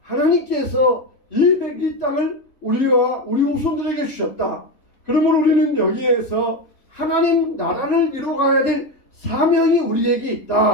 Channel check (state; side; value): late; right; 3.6 ms